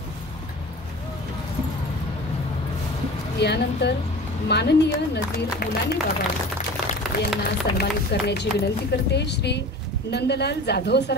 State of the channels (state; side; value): normal; both; correlation 0.38